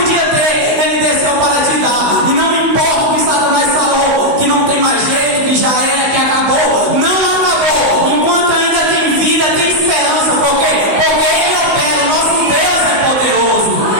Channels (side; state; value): left; late; 16 ms